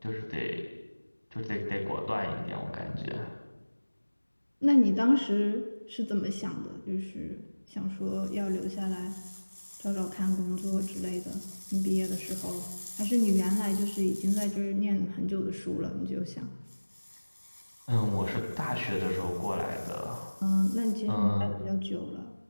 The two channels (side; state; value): both; inverted; correlation -1.00